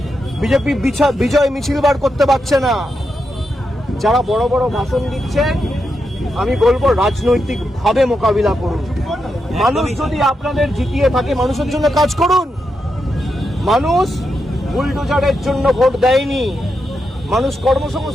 বিজেপি বিজয় মিছিল বার করতে পারছে না। যারা বড় বড় ভাষণ দিচ্ছেন, আমি বলবো রাজনৈতিকভাবে মোকাবিলা করুন। মানুষ যদি আপনাদের জিতিয়ে থাকে, মানুষের জন্য কাজ করুন। মানুষ বুলডোজারের জন্য ভোট দেয়নি, মানুষ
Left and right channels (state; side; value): normal; both; correlation 0.85